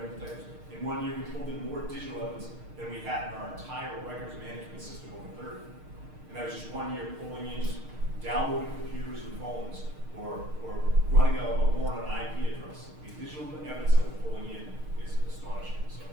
in detectives, In 1 year, we pulled in more digital evidence than we had in our entire records management system over 30. And that was just 1 year pulling in, just downloading computers and phones, or running a warrant on an IP address. The digital evidence that we're pulling in is astonishing.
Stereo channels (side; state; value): left; late; 6.5 ms